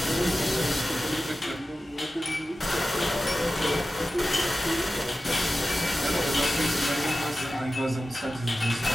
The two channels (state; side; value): normal; both; correlation 0.94